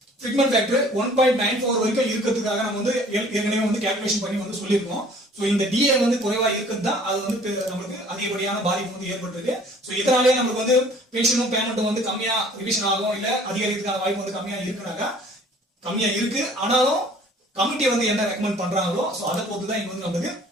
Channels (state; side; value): normal; both; correlation 0.52